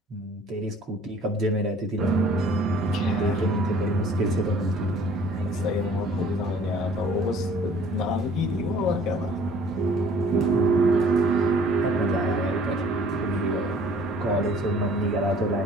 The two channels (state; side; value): normal; both; correlation 0.53